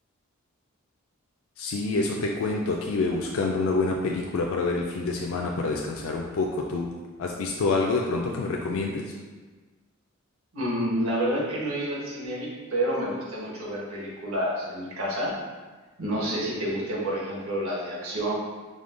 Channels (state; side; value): normal; both; correlation 0.25